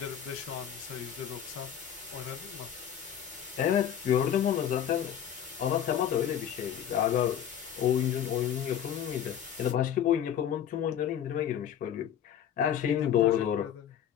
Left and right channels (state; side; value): quieter; right; 9.5 dB